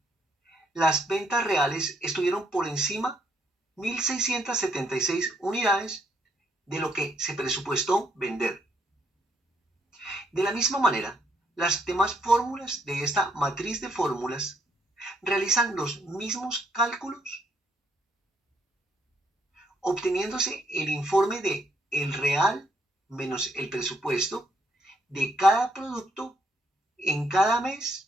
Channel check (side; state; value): both; normal; correlation 0.72